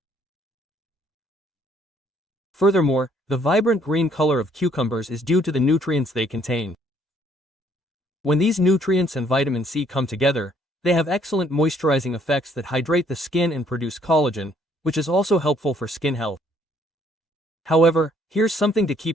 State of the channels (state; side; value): normal; both; correlation 0.65